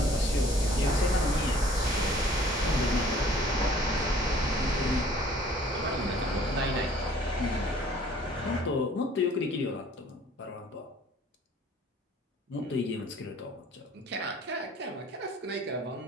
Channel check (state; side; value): normal; both; correlation 0.54